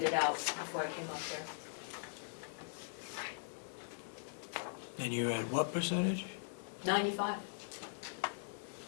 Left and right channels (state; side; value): silent; right; digital silence